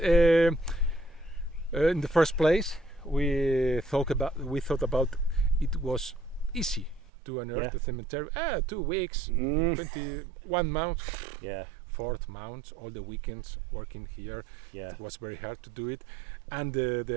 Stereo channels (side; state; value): left; drops out; at 7.1 s